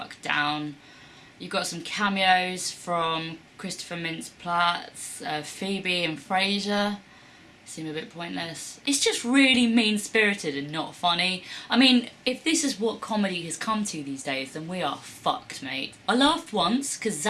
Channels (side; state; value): both; identical; correlation 1.00